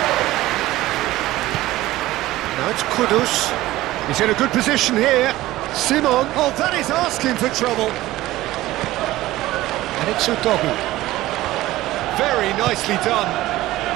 Now it's Kudus. He's in a good position here. Simon. Oh, that is asking for trouble. And it's Udogie. Very nicely done.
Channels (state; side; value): quieter; left; 16.7 dB